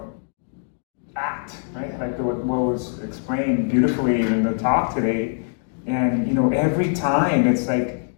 act, right? Like what was explained beautifully in the talk today. And every time it's like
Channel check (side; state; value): right; silent; digital silence